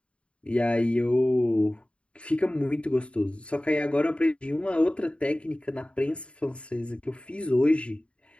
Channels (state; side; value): late; right; 0.059 ms